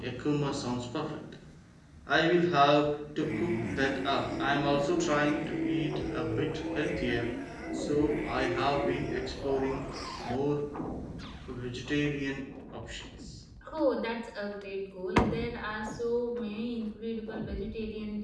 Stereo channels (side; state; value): both; identical; correlation 1.00